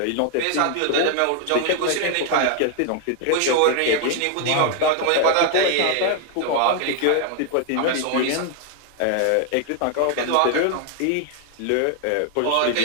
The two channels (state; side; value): different; both; correlation 0.00